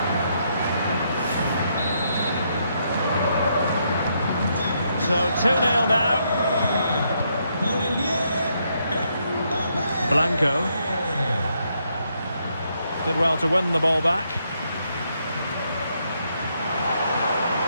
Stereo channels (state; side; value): inverted; both; correlation -0.76